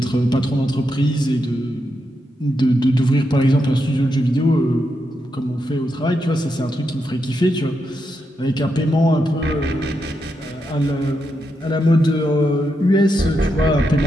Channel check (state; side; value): normal; both; correlation 0.84